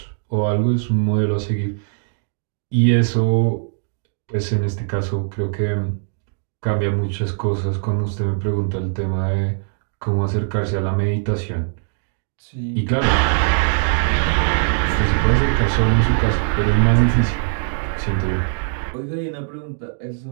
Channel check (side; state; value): left; silent; digital silence